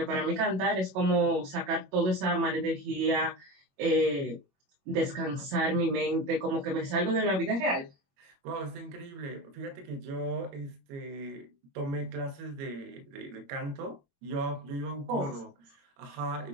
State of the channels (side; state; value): left; late; 21 ms